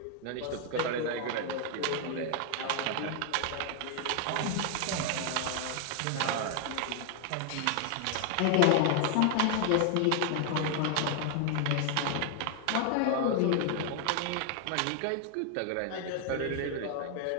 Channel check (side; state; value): both; different; correlation 0.00